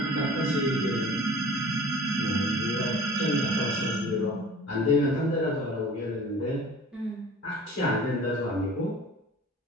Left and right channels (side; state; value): both; normal; correlation 0.44